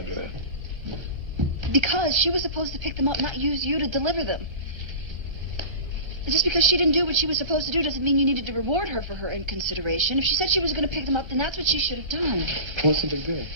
do that? Because she was supposed to pick them up, not use you to deliver them. And just because she didn't do what she was supposed to do doesn't mean you needed to reward her for her inconsideration. If she said she was going to pick them up, then that's what she should have done. What's the big deal?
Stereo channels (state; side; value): late; left; 1.3 ms